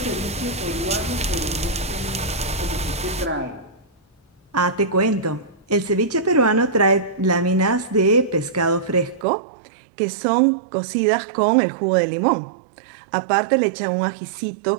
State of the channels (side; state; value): left; drops out; at 9.2 s